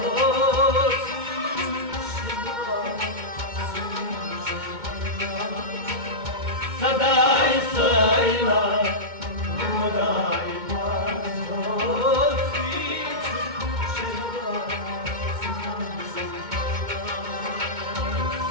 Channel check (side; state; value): left; late; 2.2 ms